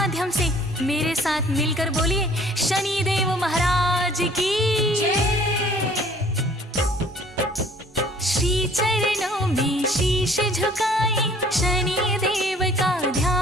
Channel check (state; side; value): normal; both; correlation 0.55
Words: से। मेरे साथ मिलकर बोलिए शनिदेव महाराज की जय। श्री चरणों में शीश झुकाए, शनिदेव का